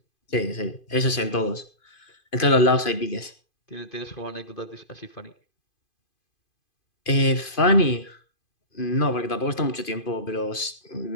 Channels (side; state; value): right; late; 2.5 ms